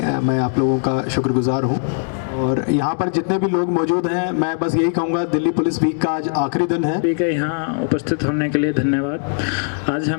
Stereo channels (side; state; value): right; silent; 65 dB below the other